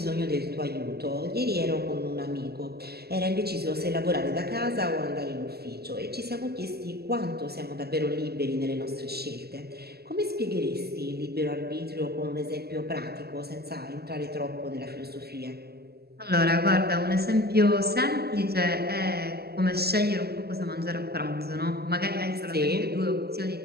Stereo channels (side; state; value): left; late; 0.46 ms